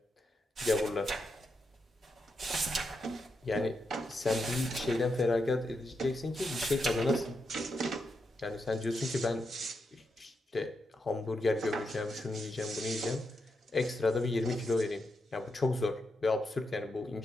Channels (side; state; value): both; normal; correlation 0.85